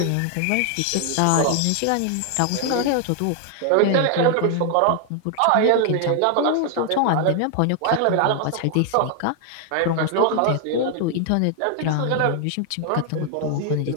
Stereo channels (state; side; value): different; both; correlation 0.00